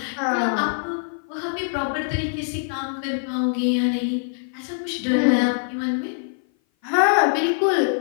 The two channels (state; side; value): silent; right; 58 dB below the other